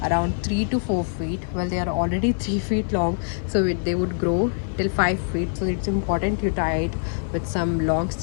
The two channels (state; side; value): silent; right; 55 dB below the other